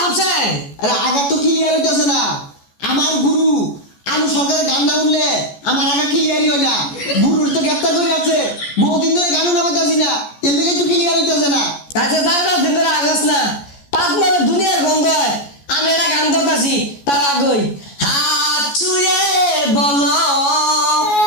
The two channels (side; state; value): right; late; 14 ms